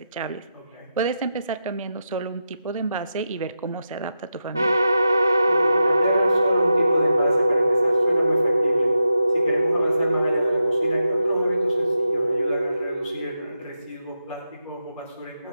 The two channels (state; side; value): inverted; both; correlation -0.88